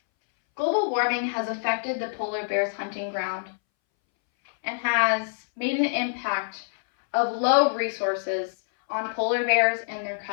Global warming has affected the polar bear's hunting ground and has made an impact of low resources on polar bears and their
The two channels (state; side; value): silent; right; 61 dB below the other